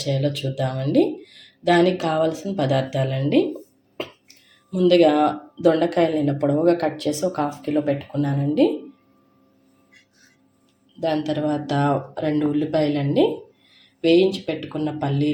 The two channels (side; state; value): both; identical; correlation 1.00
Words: చేయాలో చూద్దామండి. దానికి కావాల్సిన పదార్థాలండి. ముందుగా దొండకాయలు ఇలా పొడవుగా కట్ చేసి ఒక 1/2 కిలో పెట్టుకున్నానండి. దాని తర్వాత 2 ఉల్లిపాయలండి, వేయించి పెట్టుకున్న